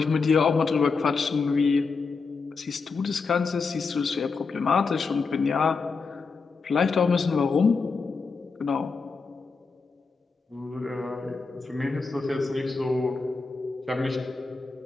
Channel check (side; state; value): right; quieter; 4.6 dB